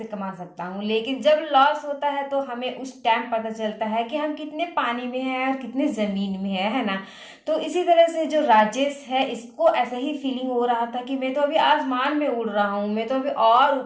कमा सकता हूँ। लेकिन जब लॉस होता है तो हमें उस टाइम पता चलता है कि हम कितने पानी में हैं और कितने जमीन में है ना। तो इसी तरह से जो राजेश है, इसको ऐसा ही फीलिंग हो रहा था कि मैं तो अभी आसमान में उड़ रहा हूँ, मैं तो अभी और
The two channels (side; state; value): both; identical; correlation 1.00